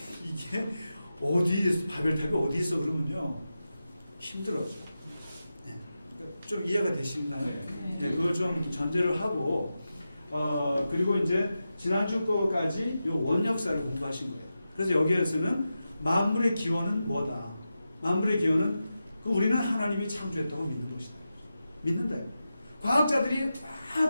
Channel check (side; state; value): both; inverted; correlation -0.91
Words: 이게 바벨탑이 어디 있어 그러면요, 힘들어져. 네. 좀 이해가 되시나요? 네. 그걸 좀 전제를 하고, 그리고 이제 지난주 거까지 요 원역사를 공부하신 거예요. 그래서 여기에서는 만물의 기원은 뭐다? 만물의 기원은 우리는 하나님이 창조했다고 믿는 것이다. 믿는다. 과학자들이